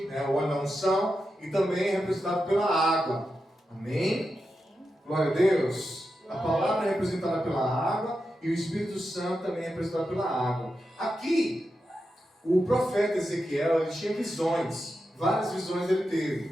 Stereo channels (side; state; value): both; normal; correlation 0.89